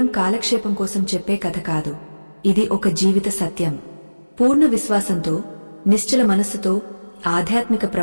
కాలక్షేపం కోసం చెప్పే కథ కాదు, ఇది ఒక జీవిత సత్యం. పూర్ణ విశ్వాసంతో, నిశ్చల మనస్సుతో ఆధ్యాత్మిక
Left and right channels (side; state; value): both; inverted; correlation -1.00